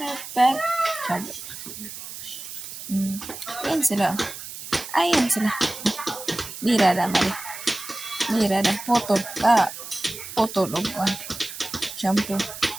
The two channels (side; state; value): right; noise; hiss, 11 dB below the sound